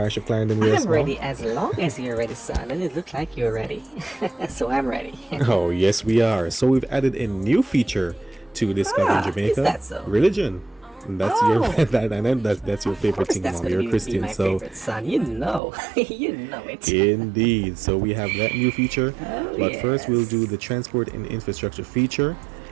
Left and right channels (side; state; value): left; drops out; at 15.6 s